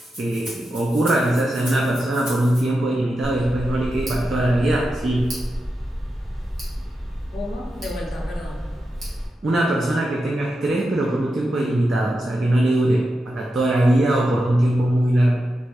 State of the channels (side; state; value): both; normal; correlation 0.89